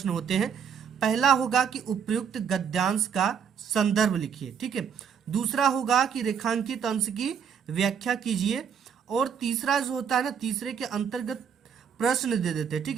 होते हैं। पहला होगा कि उपयुक्त गद्यांश का संदर्भ लिखिए। ठीक है, दूसरा होगा कि रेखांकित अंश की व्याख्या कीजिए, और तीसरा जो होता है ना, तीसरे के अंतर्गत प्रश्न दे देते हैं। ठीक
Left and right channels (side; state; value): left; quieter; 7.3 dB